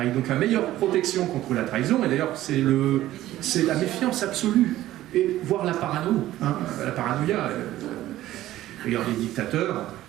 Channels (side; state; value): left; quieter; 14.6 dB